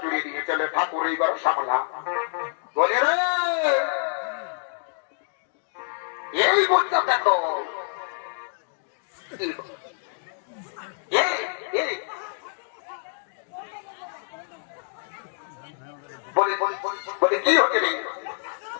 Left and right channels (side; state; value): right; silent; digital silence